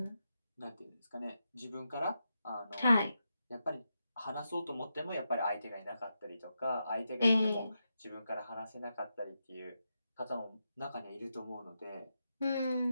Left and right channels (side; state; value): both; inverted; correlation -0.86